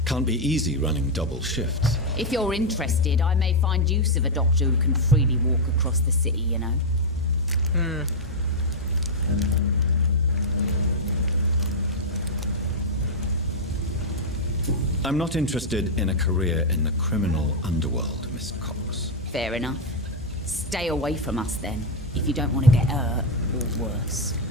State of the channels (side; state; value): both; normal; correlation -0.02